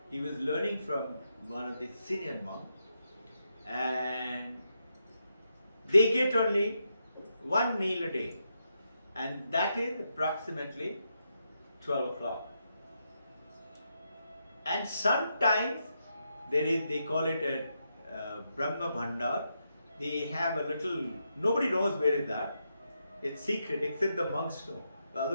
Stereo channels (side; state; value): both; inverted; correlation -0.83